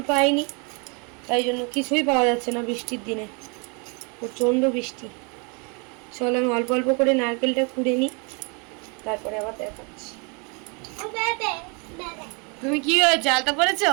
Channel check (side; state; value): left; quieter; 33.7 dB